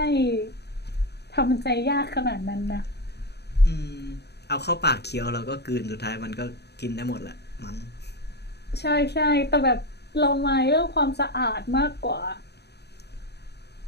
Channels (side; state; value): right; late; 0.48 ms